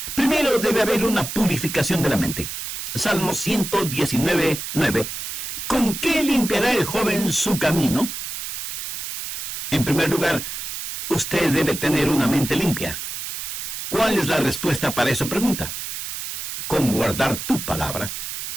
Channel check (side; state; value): right; noise; hiss, 6 dB below the sound